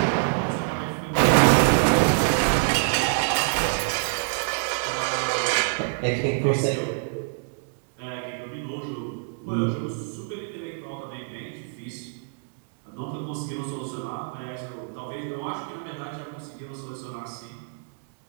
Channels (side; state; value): left; silent; digital silence